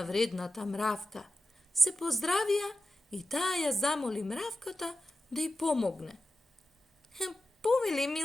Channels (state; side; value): normal; both; correlation 0.92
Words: вредната мравка. Се поздравија и таа ја замоли мравката да ја помогне. Повели,